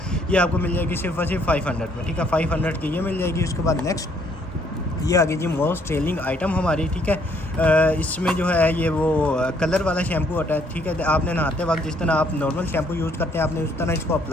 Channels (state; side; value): normal; both; correlation 0.66